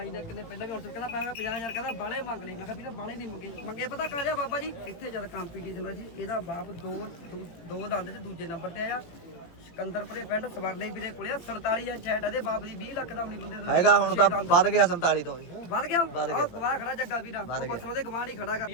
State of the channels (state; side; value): late; right; 18 ms